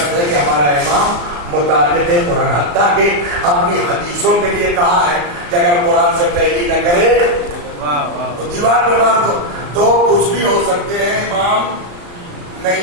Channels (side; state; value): left; late; 34 ms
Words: है कि हमारा इमाम मुताबिक कुरान, हत्ता के अपनी हदीसों के लिए कहा है कि अगर कुरान से तैलील न करे तो दीवार पे मार दो। तो कुछ भी हो सकते हैं, इमाम